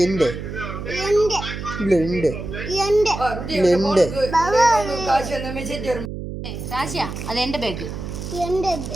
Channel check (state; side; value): noise; right; hum, 7 dB below the sound